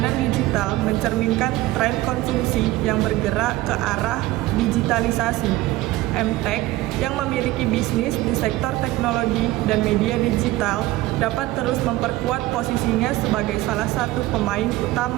digital mencerminkan tren konsumsi yang bergerak ke arah digitalisasi. MTech yang memiliki bisnis di sektor teknologi dan media digital dapat terus memperkuat posisinya sebagai salah satu pemain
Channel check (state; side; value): quieter; left; 17.4 dB